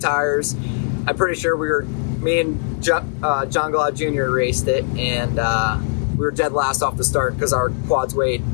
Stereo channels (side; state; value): right; silent; 62 dB below the other